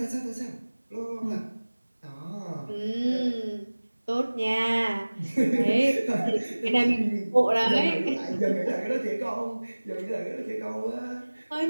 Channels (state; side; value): inverted; both; correlation -1.00